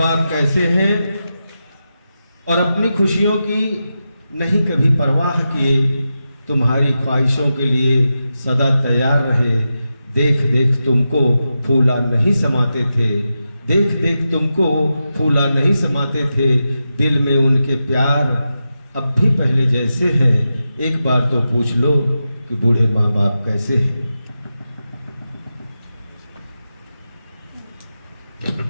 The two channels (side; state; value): both; inverted; correlation -0.90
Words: कैसे हैं। और अपनी खुशियों की नहीं कभी परवाह किए, तुम्हारी ख्वाहिशों के लिए सदा तैयार रहे। देख देख तुमको फूला नहीं समाते थे, देख देख तुमको फूला नहीं समाते थे। दिल में उनके प्यार अब भी पहले जैसे हैं। एक बार तो पूछ लो कि बूढ़े माँ बाप कैसे हैं।